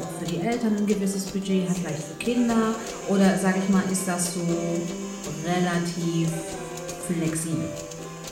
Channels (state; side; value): identical; both; correlation 1.00